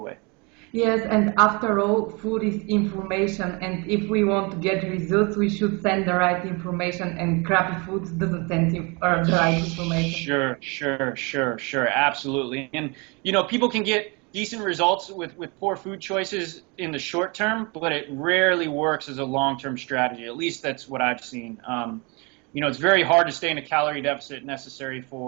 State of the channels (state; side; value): quieter; left; 29.8 dB